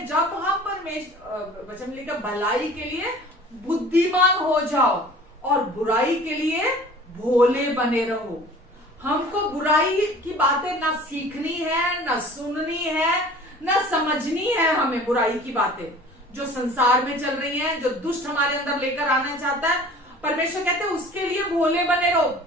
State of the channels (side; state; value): both; normal; correlation 0.45